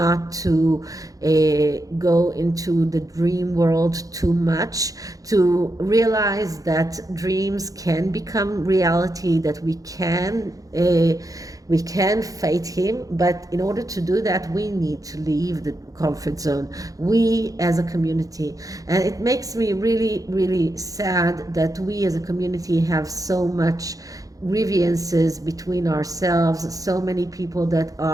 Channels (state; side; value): late; left; 0.17 ms